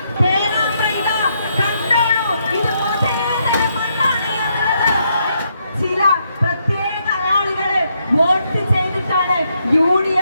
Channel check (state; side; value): inverted; both; correlation -0.77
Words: പേരാമ്പ്രയില കണ്ടോളൂ, ഇത് മുതലേതര മണ്ണാണ് എന്നുള്ളത് ചില പ്രത്യേക ആളുകള് വോട്ട് ചെയ്തിട്ടാണ്